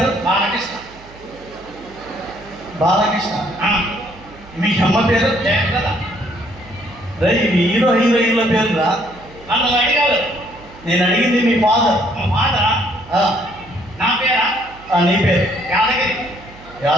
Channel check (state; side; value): noise; right; hum, 22 dB below the sound